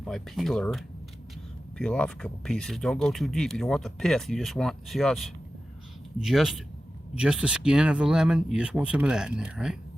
my peeler, peel off a couple pieces. Don't go too deep. You don't want the pith. You just want, see how it's just the skin of the lemon. You just want some of that in there, right?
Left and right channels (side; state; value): both; normal; correlation 0.93